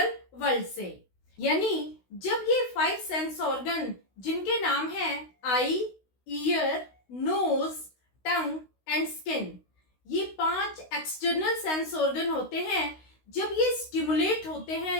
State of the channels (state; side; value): late; right; 16 ms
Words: वर्ल्ड से। यानी जब ये 5 सेंस ऑर्गन जिनके नाम है eye, ear, nose, tongue and skin, ये 5 एक्सटर्नल सेंस ऑर्गन होते हैं, जब ये स्टिमुलेट होते